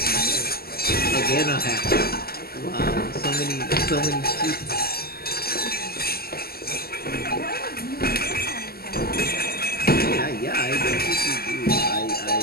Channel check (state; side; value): late; right; 0.45 ms